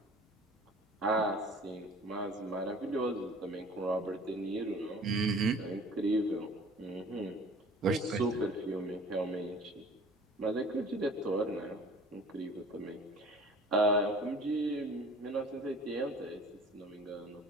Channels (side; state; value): both; normal; correlation 0.47